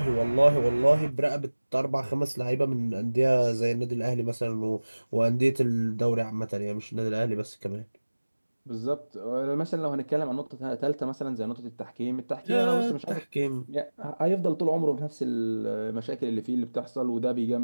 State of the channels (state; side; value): inverted; both; correlation -1.00